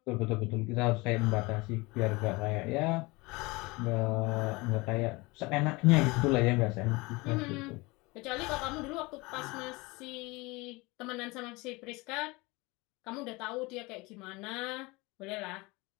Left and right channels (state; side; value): quieter; right; 24.1 dB